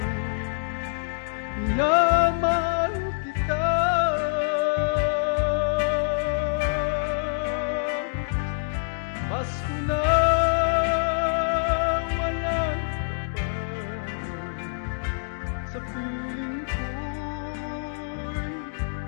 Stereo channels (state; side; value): silent; right; digital silence